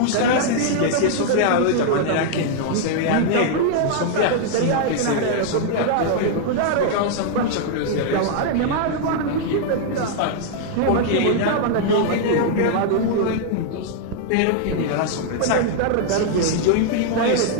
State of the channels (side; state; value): both; different; correlation 0.00